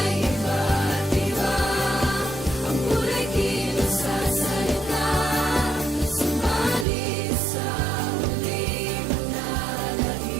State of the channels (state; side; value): drops out; left; at 6.9 s